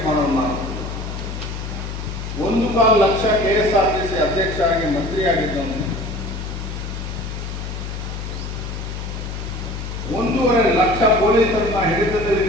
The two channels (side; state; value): left; noise; hum, 6 dB below the sound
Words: ಮಾಡೋನು ನಾನು. 1.25 ಲಕ್ಷ KSRTC ಅಧ್ಯಕ್ಷ ಆಗಿ ಮಂತ್ರಿ ಆಗಿದ್ದವನು. 1.5 ಲಕ್ಷ ಪೊಲೀಸರನ್ನ ಹಿಡಿತದಲ್ಲಿ